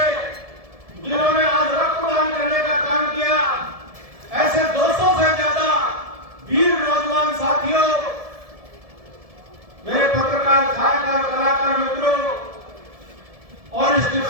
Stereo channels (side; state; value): left; late; 1.7 ms